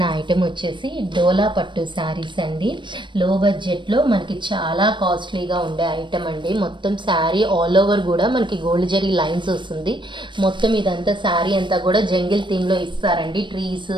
ఐటెం వచ్చేసి డోలా పట్టు శారీస్ అండి. లో బడ్జెట్లో మనకి చాలా కాస్ట్లీగా ఉండే ఐటెం అండి. మొత్తం శారీ ఆల్ ఓవర్ కూడా మనకి గోల్డ్ జరీ లైన్స్ వస్తుంది. మొత్తం ఇదంతా శారీ అంతా కూడా జంగిల్ థీమ్లో ఇస్తారండి. ట్రీస్,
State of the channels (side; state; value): left; late; 0.23 ms